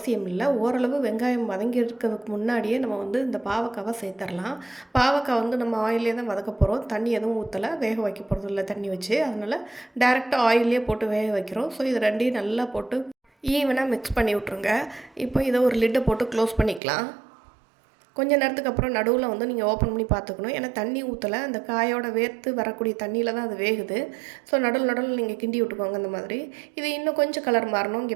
இல்லை. ஓரளவு வெங்காயம் வதங்கி இருக்கிறதுக்கு முன்னாடியே நம்ம வந்து இந்த பாவக்காவை சேர்த்துடலாம். பாவக்காய் வந்து நம்ம ஆயிலே தான் வதக்க போகிறோம். தண்ணி எதுவும் ஊற்றலை, வேக வைக்க போகிறது இல்லை தண்ணி வச்சு. அதனால் டேரெக்டாக ஆயிலே போட்டு வேக வைக்கிறோம். ஸோ இது ரெண்டையும் நல்லா போட்டு ஈவனாக மிக்ஸ் பண்ணி விட்ருங்க. இப்போ இதை ஒரு லிட்டை போட்டு க்ளோஸ் பண்ணிக்கலாம். கொஞ்ச நேரத்துக்கு அப்புறம் நடுவில் வந்து நீங்கள் ஓப்பன் பண்ணி பார்த்துக்கணும். ஏன்னா தண்ணி ஊற்றலை, அந்த காயோட வேர்த்து வரக்கூடிய தண்ணியில் தான் அது வேகுது. ஸோ நடுவில் நீங்கள் கிண்டி விட்டுக்கோங்க இந்த மாதிரி. இது இன்னும் கொஞ்சம் கலர் மாறணும்.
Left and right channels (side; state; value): left; drops out; at 16.8 s